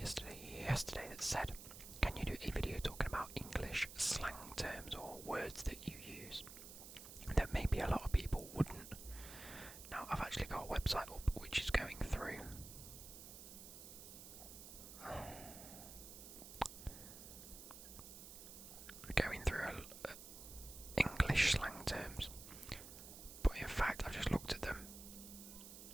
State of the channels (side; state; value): right; noise; hiss, 13 dB below the sound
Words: said, can you do a video talking about English slang terms or words that you use that maybe a lot of people wouldn't? Now, I've actually got a website up which is going through English slang terms, but in fact I've just looked at them